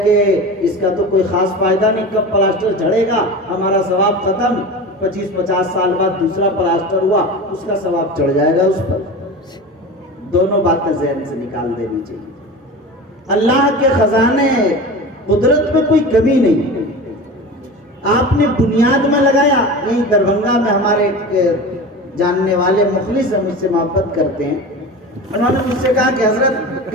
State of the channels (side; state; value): both; normal; correlation 0.31